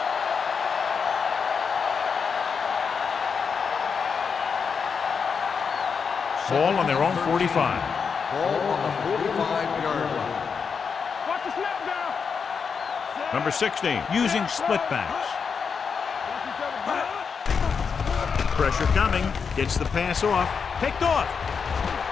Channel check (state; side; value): quieter; right; 5.9 dB